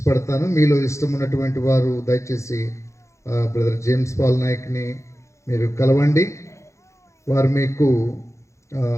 మీలో ఇష్టం ఉన్నటువంటి వారు దయచేసి బ్రదర్ జేమ్స్ పాల్ నాయక్ని మీరు కలవండి. వారు మీకు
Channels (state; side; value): late; right; 0.14 ms